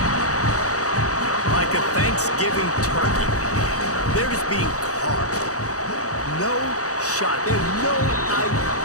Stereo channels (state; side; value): late; right; 0.66 ms